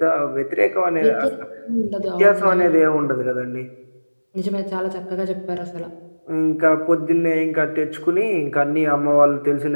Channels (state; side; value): inverted; both; correlation -1.00